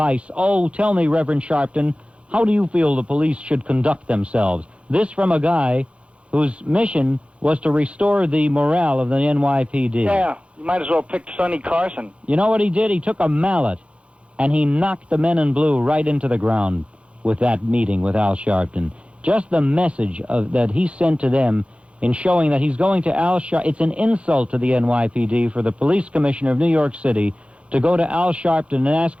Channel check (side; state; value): left; late; 0.060 ms